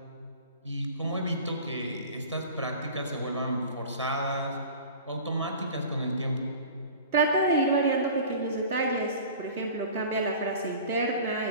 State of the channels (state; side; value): inverted; both; correlation -0.40